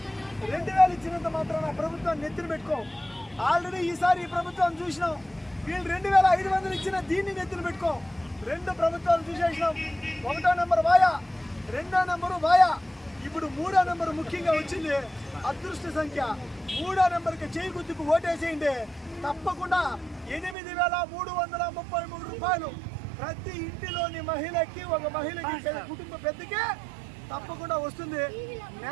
2000 ఇచ్చినంత మాత్రం నా ప్రభుత్వాన్ని నెత్తిన పెట్టుకోం. ఆల్రెడీ ఈసారి ఈ ప్రభుత్వాన్ని చూసినాం. వీళ్ళు 2500 ఇచ్చిన దీన్ని నెత్తిన పెట్టుకోం. 2 ప్రభుత్వాలు చూసేసినాం. 1వ నెంబర్ వాయా, 2వ నెంబరు వాయా, ఇప్పుడు 3వ నెంబర్ ముఖ్యంగా వచ్చింది. అదృష్ట సంఖ్య 3వ నెంబర్కి చేయి గుర్తుకు ఓటేసేయండి. తప్పకుండా 8333 రూపాయలు ప్రతి ఇంటిలోని మహిళకి, ఒక మహిళకి, కుటుంబ పెద్దకి తప్పకుండా వస్తుంది.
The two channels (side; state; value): left; drops out; at 20.6 s